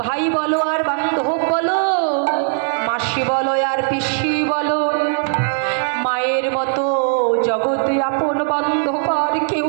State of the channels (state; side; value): silent; left; 64 dB below the other